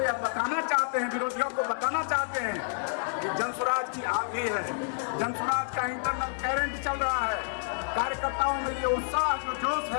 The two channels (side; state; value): right; silent; digital silence